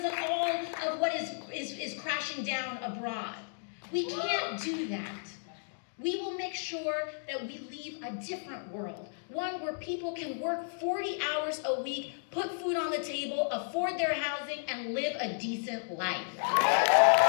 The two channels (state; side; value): silent; right; digital silence